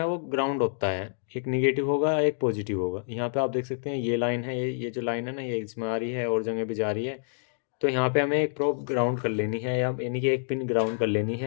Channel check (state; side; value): silent; right; digital silence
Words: वो ग्राउंड होता है। एक निगेटिव होगा, एक पॉजिटिव होगा। यहाँ पे आप देख सकते हैं ये लाइन है, ये जो लाइन है ना, ये इसमें आ रही है और जगह भी जा रही है। तो यहाँ पे हमें एक प्रोब ग्राउंड कर लेनी है, या यानी कि एक पिन ग्राउंड कर लेनी